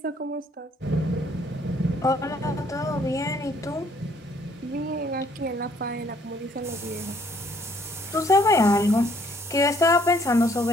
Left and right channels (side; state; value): both; normal; correlation 0.64